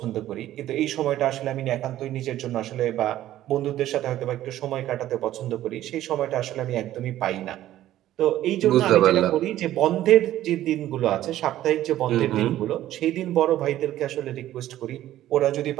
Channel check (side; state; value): left; quieter; 13.5 dB